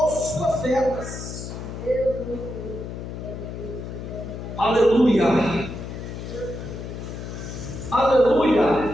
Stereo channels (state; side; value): noise; left; hum, 8 dB below the sound